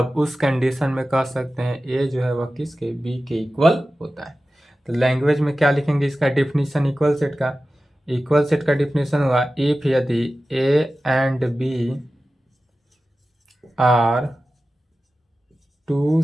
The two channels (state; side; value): normal; both; correlation 0.95